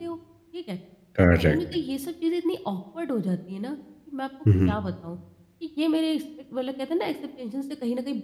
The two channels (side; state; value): both; identical; correlation 1.00